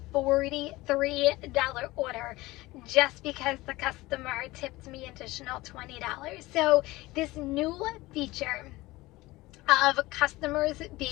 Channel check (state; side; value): quieter; right; 19.8 dB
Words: $43 order just because the customer tipped me additional $20. So this new feature of customers